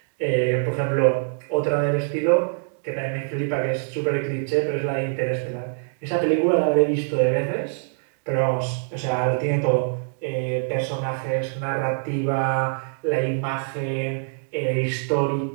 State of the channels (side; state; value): left; silent; 62 dB below the other